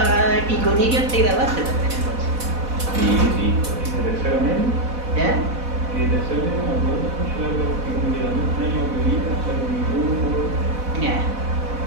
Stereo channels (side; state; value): left; late; 4.1 ms